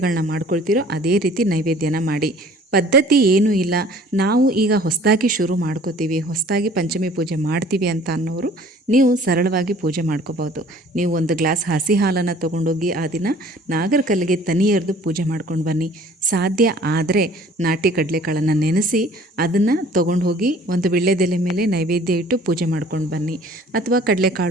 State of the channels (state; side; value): normal; both; correlation 0.52